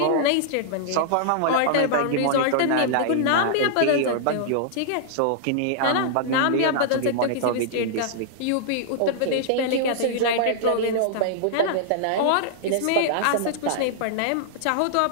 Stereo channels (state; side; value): different; both; correlation -0.01